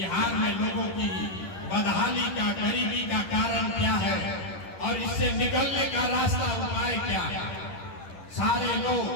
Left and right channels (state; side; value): late; right; 11 ms